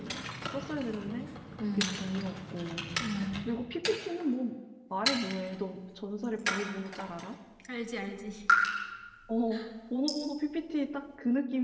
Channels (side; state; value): both; identical; correlation 1.00